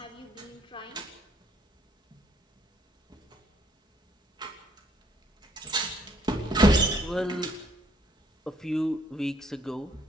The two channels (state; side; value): normal; both; correlation 0.67